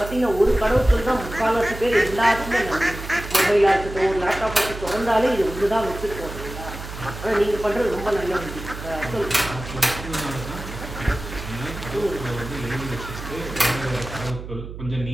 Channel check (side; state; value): right; noise; hum, 10 dB below the sound